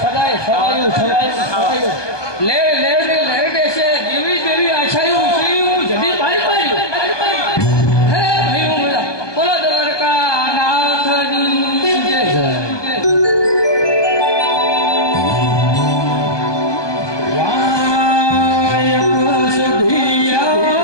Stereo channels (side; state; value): right; late; 1.2 ms